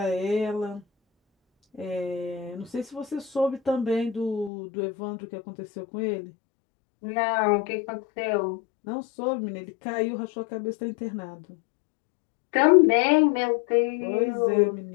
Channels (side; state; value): right; drops out; at 4.5 s